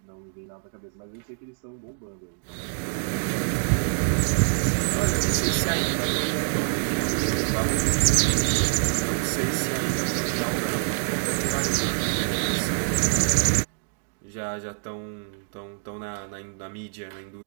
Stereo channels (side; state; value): left; silent; digital silence